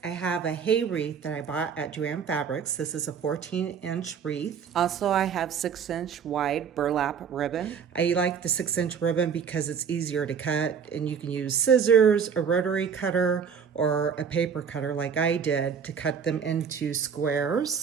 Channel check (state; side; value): quieter; left; 6.9 dB